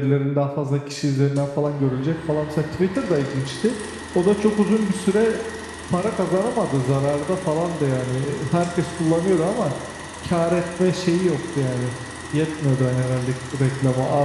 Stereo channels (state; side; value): identical; both; correlation 1.00